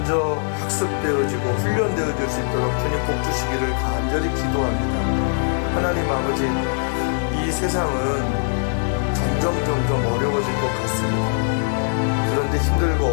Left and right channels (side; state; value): right; silent; 65 dB below the other